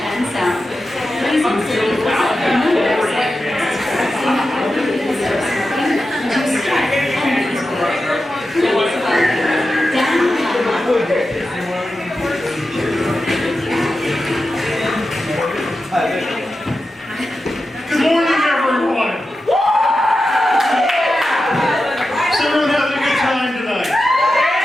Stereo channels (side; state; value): both; normal; correlation 0.91